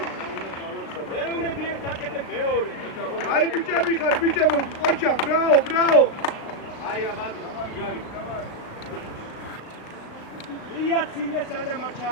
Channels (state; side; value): late; right; 36 ms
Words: მეუნები ერთ აკეთე მეორე. აი ბიჭები ხარ, ბიჭებო, ოჩა, ბრაო. აი აბა, იარი. იაცილე სანამ არ